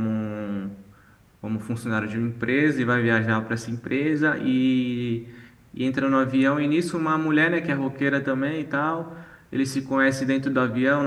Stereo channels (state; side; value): identical; both; correlation 1.00